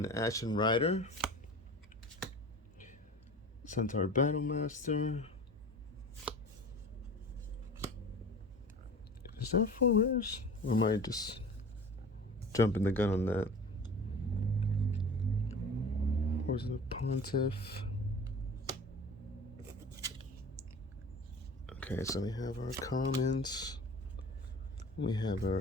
Ashen Rider. Centaur Battlemaster. Is that 4 rares? Or am I just jumping the gun on that? Or is it a Pontiff? Okay, so we have our commons. We have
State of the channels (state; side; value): normal; both; correlation 0.38